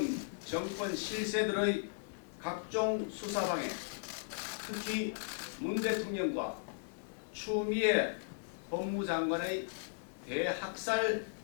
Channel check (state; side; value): silent; right; digital silence